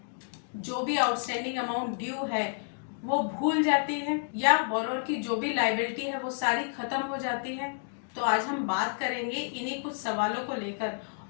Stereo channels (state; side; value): silent; right; digital silence